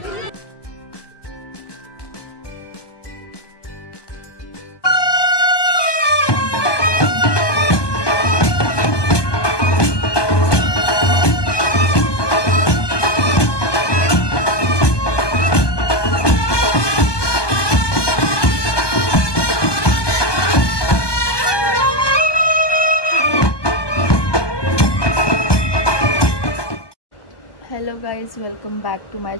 Hello guys, welcome back to my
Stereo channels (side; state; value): right; late; 1.2 ms